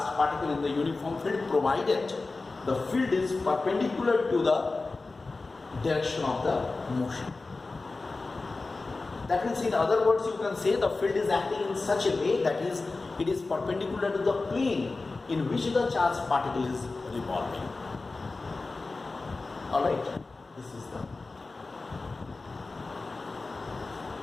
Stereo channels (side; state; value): right; quieter; 3.6 dB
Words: particle in the uniform field provided the field is perpendicular to the direction of the motion. That means, in other words, you can say the field is acting in such a way that is, it is perpendicular to the plane in which the charged particle is revolving. Alright, this is the